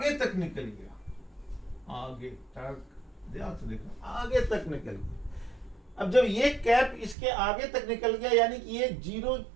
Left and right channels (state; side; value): drops out; left; at 7.2 s